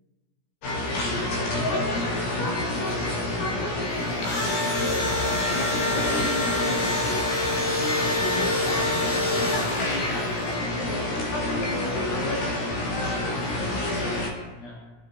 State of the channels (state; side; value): late; right; 17 ms